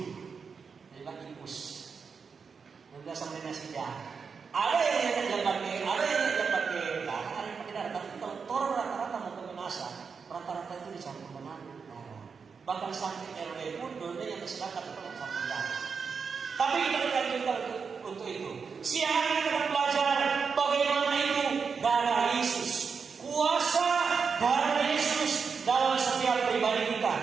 Dia bilang ipus. Dia sama nasi jahe. Ada yang pakai, ada yang pakai darah, ada yang pakai darah. Tapi kalau orang rata-rata mau ke Minasa, rata-rata itu dicampur dengan darah. Bahkan sampai RW pun dulu yang keselakat itu campur darah. Tapi kita dianjurkan untuk itu. Siang hari kita akan belajar bagaimana itu darah Yesus, kuasa darah Yesus dalam setiap pribadi kita.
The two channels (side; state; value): left; quieter; 5.6 dB